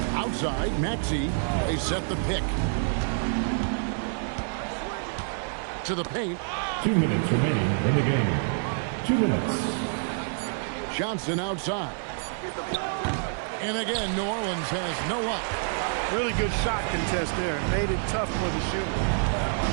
Outside, Maxey. They set the pick. To the paint. 2 minutes remaining in the game. 2 minutes. Johnson outside. And again, New Orleans has no luck. Really good shot contest there. Made it tough for the shooter.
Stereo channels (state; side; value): silent; left; 60 dB below the other